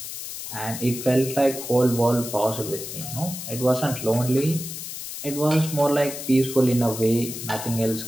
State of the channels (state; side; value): noise; left; hiss, 8 dB below the sound